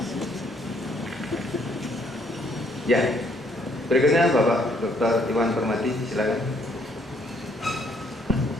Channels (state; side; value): normal; both; correlation 0.67